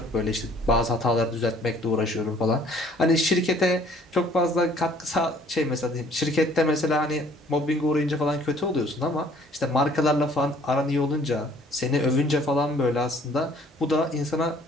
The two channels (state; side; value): normal; both; correlation 0.57